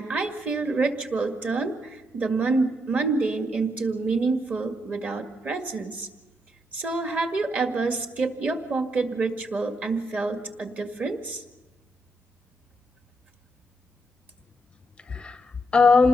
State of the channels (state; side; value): normal; both; correlation 0.78